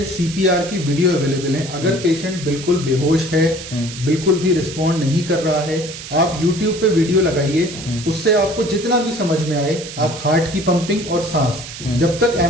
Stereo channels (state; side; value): noise; right; hiss, 11 dB below the sound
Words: CPR की वीडियो अवेलेबल है। अगर पेशेंट बिल्कुल बेहोश है, बिल्कुल भी रिस्पॉन्ड नहीं कर रहा है, आप YouTube पे वीडियो लगाइए, उससे आपको जितना भी समझ में आए, आप हार्ट की पंपिंग और सांस, जब तक